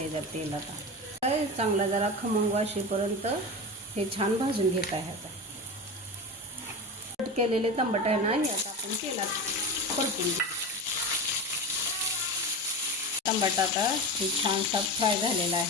आहे तेल. आता चांगला जरा खमंग वाशेपर्यंत हे छान भाजून घेत आहे. आता कट केलेले टमाटे आहे ना, हे आता आपण तेलात परतून घेऊ. टमाटा आता हे छानसा फ्राय झालेला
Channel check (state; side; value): normal; both; correlation 0.25